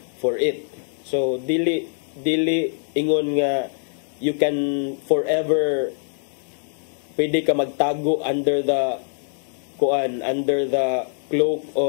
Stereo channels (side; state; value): right; silent; digital silence